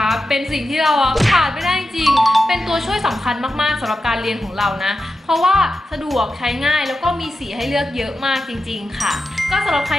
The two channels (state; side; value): normal; both; correlation 0.91